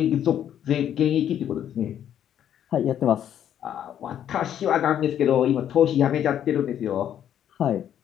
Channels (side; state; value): right; quieter; 10.1 dB